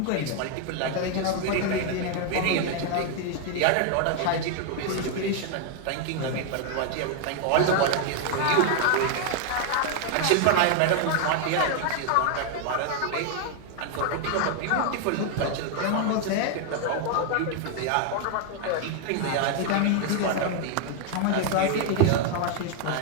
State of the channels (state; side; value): different; both; correlation 0.00